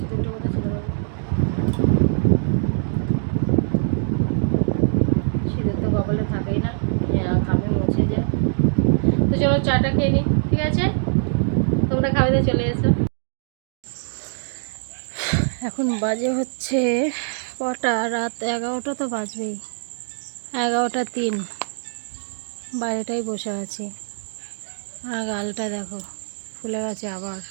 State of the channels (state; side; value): silent; left; digital silence